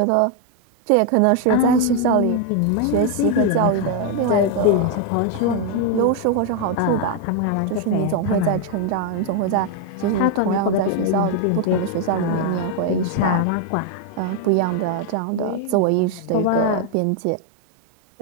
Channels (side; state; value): both; different; correlation 0.01